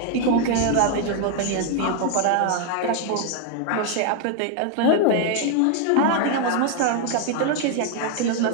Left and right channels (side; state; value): both; different; correlation 0.00